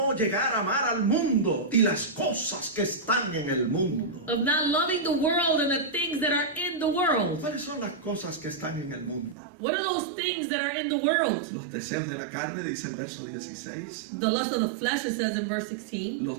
llegar a amar al mundo y las cosas que están en el mundo. of not loving the world and the things that are in the world. ¿Cuáles son las cosas que están en el mundo? What are those things that are in the world? Los deseos de la carne, dice el verso 16, The lust of the flesh, it says in verse 16. los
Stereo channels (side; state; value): left; drops out; at 9.3 s